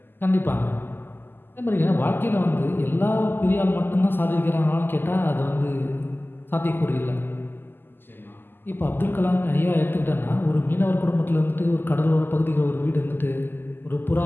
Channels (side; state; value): right; late; 0.096 ms